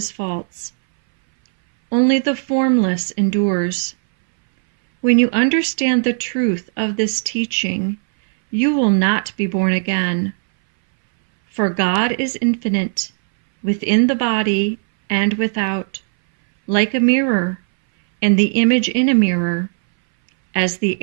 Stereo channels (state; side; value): silent; left; 63 dB below the other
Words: false. Only the formless endures. When you understand the truth of this teaching, you will not be born again. For God is infinite, within the body and without, like a mirror, and the image in a mirror. As the